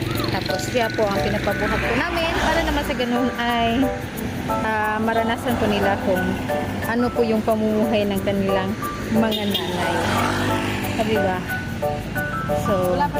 Tapos, siya po ang pinapabuhat po namin para naman sa ganun ay maranasan po nila kung ano po yung pamumuhay ng kanilang mga nanay. Diba? So, Wala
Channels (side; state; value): both; identical; correlation 1.00